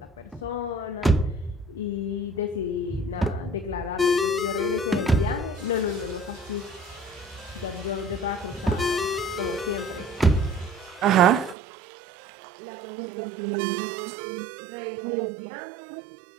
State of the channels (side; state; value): left; drops out; at 11.6 s